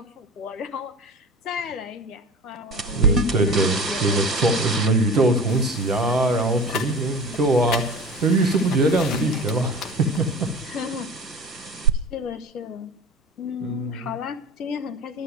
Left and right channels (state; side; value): normal; both; correlation 0.36